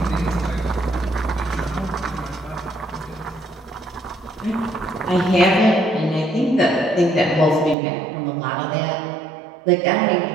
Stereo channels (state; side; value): drops out; left; at 7.8 s